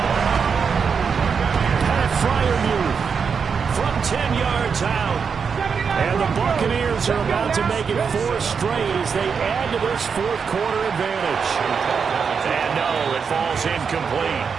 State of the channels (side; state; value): left; quieter; 6.1 dB